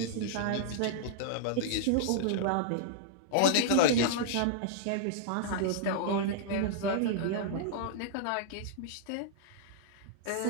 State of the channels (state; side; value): different; both; correlation -0.01